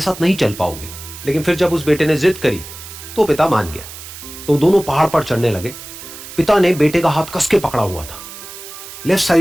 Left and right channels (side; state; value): right; noise; hiss, 14 dB below the sound